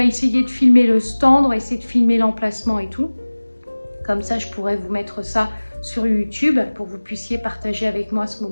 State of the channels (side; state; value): both; inverted; correlation -1.00